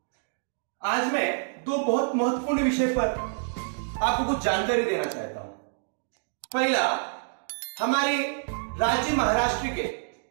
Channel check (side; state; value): left; silent; digital silence